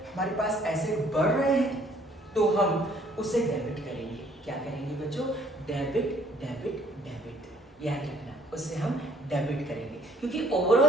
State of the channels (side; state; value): both; normal; correlation 0.61